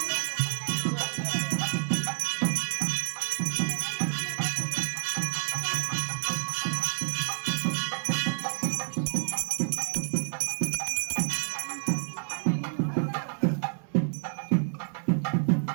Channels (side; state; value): left; silent; digital silence